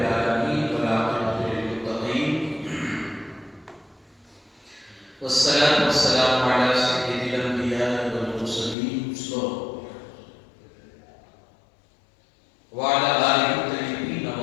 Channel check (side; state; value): right; drops out; at 8.8 s